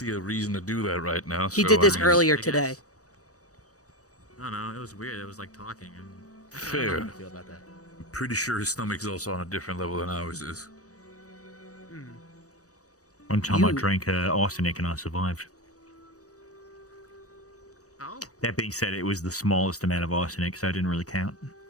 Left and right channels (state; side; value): late; right; 0.66 ms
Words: a reason to do that right now. He so, did this I mean, earlier today. I don't know. It was weird. It was like talking. And Fair. How do you feel about that? pretty sure his stomach's also on a different level than ours is. One time I drank arsenic and I survived. Oh. That being said, it was the smallest amount of arsenic, so it didn't really count.